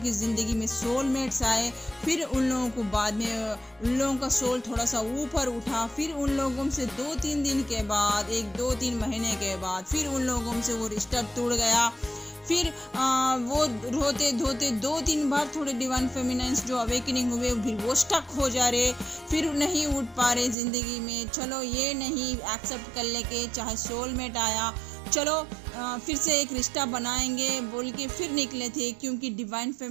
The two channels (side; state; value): left; drops out; at 20.6 s